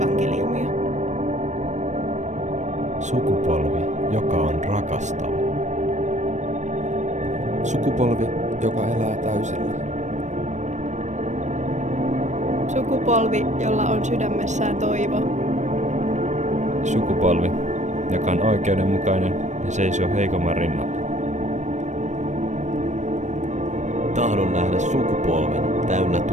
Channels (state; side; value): late; left; 0.34 ms